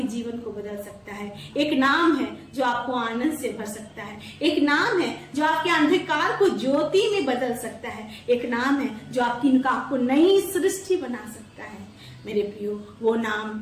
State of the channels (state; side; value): identical; both; correlation 1.00